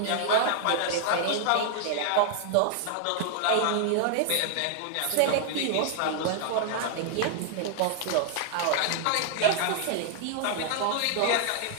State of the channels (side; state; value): both; different; correlation 0.00